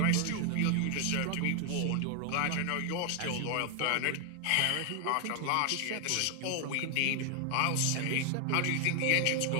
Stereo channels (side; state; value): both; different; correlation 0.00